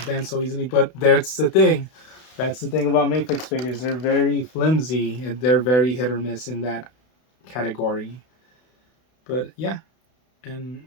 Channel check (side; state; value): right; late; 32 ms